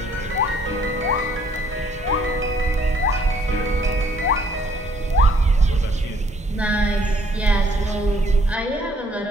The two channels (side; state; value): both; normal; correlation 0.63